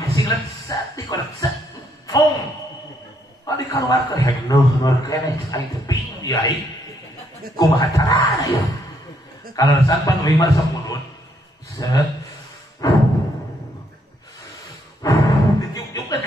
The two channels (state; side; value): normal; both; correlation 0.72